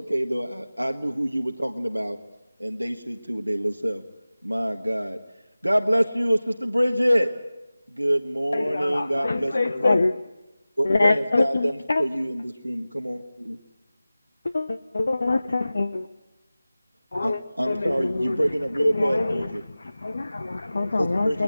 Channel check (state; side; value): inverted; both; correlation -0.97